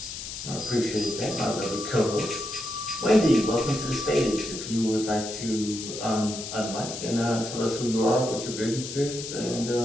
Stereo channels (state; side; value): noise; left; hiss, 8 dB below the sound